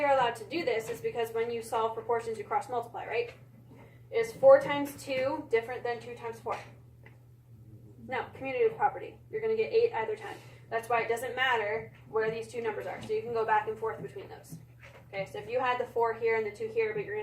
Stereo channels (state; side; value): identical; both; correlation 1.00